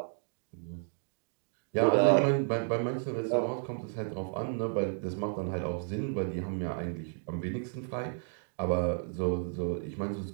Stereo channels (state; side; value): silent; left; 56 dB below the other